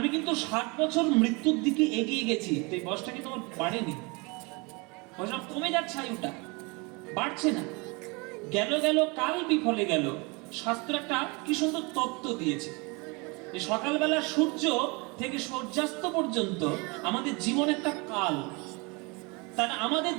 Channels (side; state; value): left; quieter; 28.5 dB